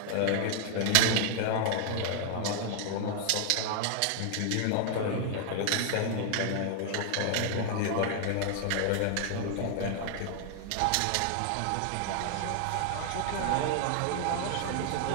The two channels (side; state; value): both; different; correlation 0.00